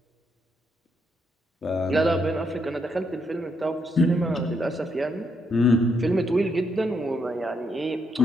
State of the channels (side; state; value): both; normal; correlation 0.77